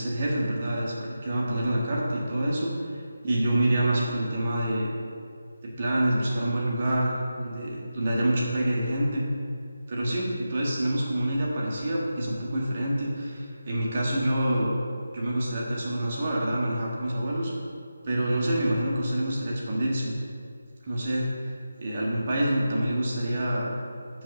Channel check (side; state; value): both; inverted; correlation -0.91